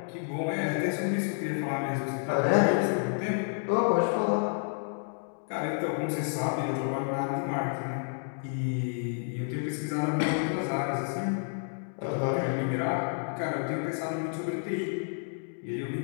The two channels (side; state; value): right; silent; 58 dB below the other